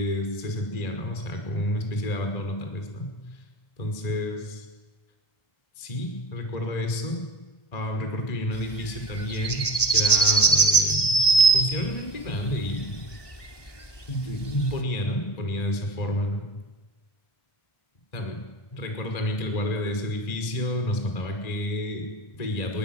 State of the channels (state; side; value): late; right; 1.2 ms